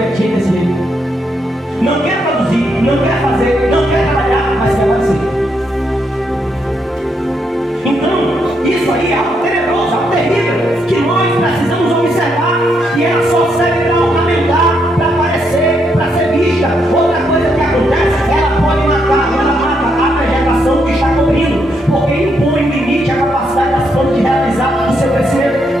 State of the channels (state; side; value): normal; both; correlation 0.78